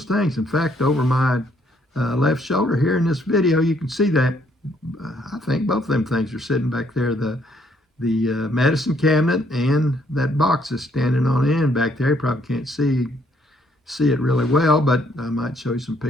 things. In fact, over my left shoulder here in this video, you can see that I think both of them things are sitting back there. The medicine cabinet and that box is standing on end back there. You probably can't see it really well, but I might show you some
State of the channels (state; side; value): normal; both; correlation 0.68